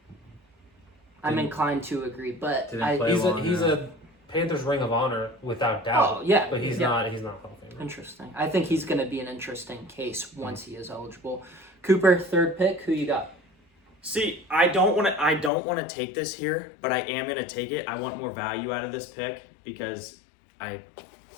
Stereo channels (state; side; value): drops out; right; at 15.5 s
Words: I'm inclined to agree, but Didn't play long He's enough. a Panthers Ring of Honor without doubt. Oh yeah, But he's yeah. not Hall of Famer. Interesting. I think he's going to be an interesting case once he is eligible. Cooper, third pick. Who you got? See, I don't want to take this here, but I am going to take it. I want more value out of this pick because